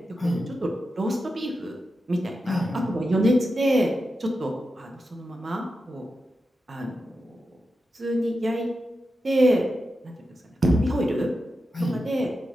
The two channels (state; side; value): normal; both; correlation 0.90